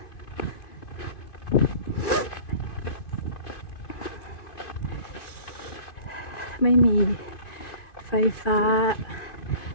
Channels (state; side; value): late; right; 2.5 ms